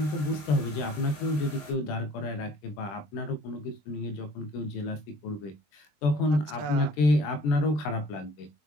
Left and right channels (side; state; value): right; late; 20 ms